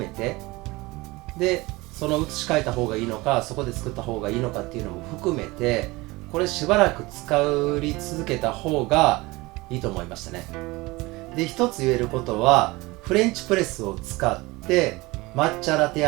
て、でその移し替えた方がいいのかそこで作った方がいいのかっていうのも含めてこれしばらく使い続けた方がいいと思いましたね。で一つ言えることはフレンチプレスを使って抹茶ラテ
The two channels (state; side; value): quieter; left; 22.1 dB